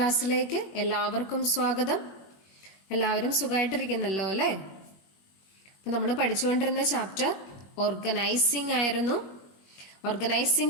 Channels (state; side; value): late; right; 21 ms